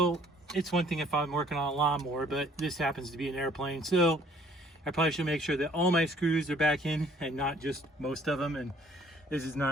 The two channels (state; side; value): normal; both; correlation 0.59